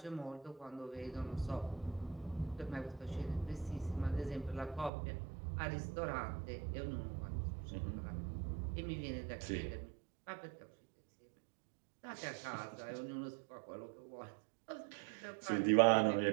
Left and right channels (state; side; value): drops out; left; at 4.9 s